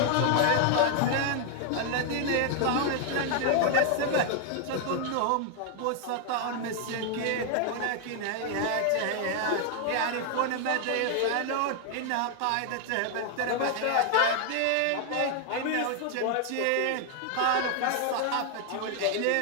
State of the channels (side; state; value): both; different; correlation 0.00